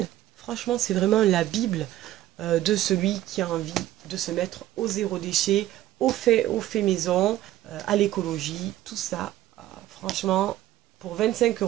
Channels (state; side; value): quieter; left; 14.2 dB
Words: Franchement, c'est vraiment la Bible de celui qui a envie de se mettre au zéro déchet, au fait maison, à l'écologie, tout ça. Franchement, pour 25